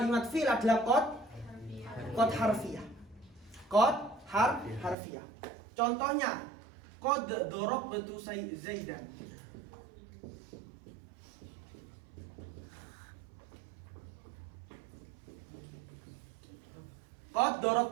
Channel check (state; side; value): drops out; left; at 5.0 s